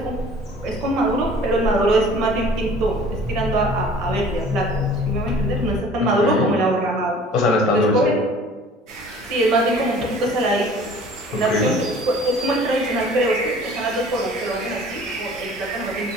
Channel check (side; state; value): both; normal; correlation 0.49